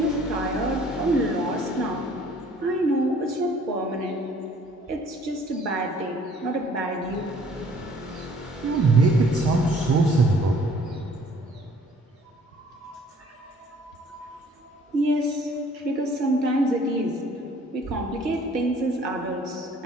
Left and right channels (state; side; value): normal; both; correlation 0.56